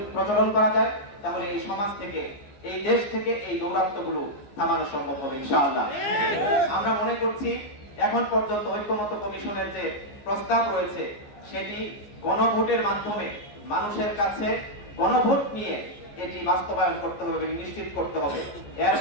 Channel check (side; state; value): right; late; 14 ms